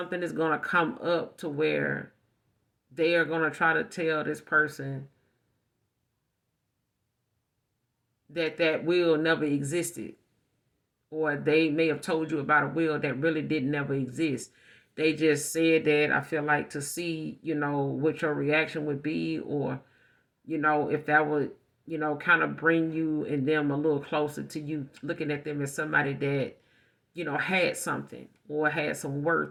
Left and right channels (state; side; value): identical; both; correlation 1.00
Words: is going to come up to where they are going to try to tell this person that will never existed, or they may have told you about a will that really didn't never exist. They just said that, I feel like, to see, what your reaction would be, or, if that would, kind of bring you and them a little closer to you, looking at them as somebody that, had something or had some